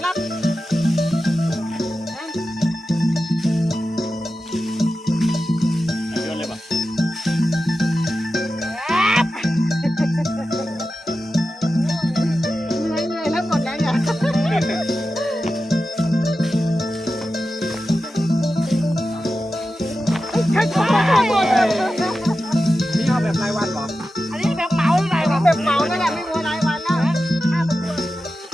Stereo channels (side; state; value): both; normal; correlation 0.92